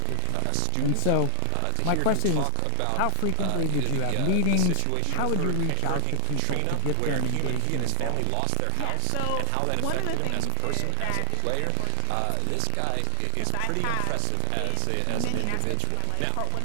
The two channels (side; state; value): both; different; correlation 0.00